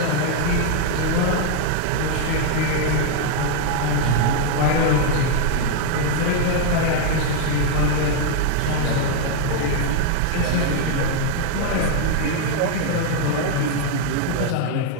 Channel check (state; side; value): different; both; correlation 0.00